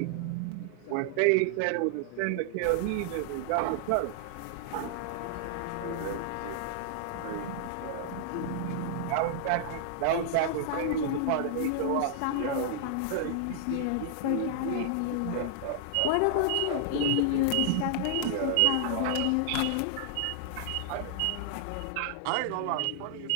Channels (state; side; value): different; both; correlation -0.01